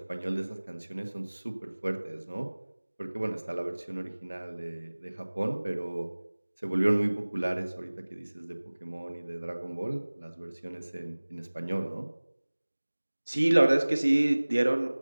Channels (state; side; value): inverted; both; correlation -1.00